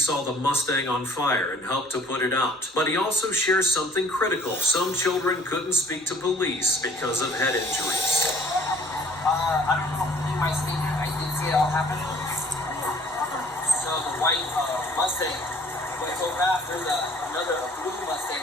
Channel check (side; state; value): both; normal; correlation 0.54